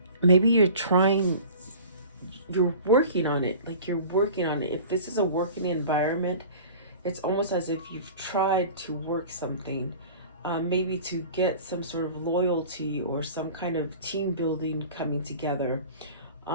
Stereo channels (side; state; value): both; inverted; correlation -0.41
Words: maybe you're working on it. Like you're working on it. If this is a working environment, it's almost as if you've tried to work something, maybe to get some sort of loyalty or some kind of team building coming together.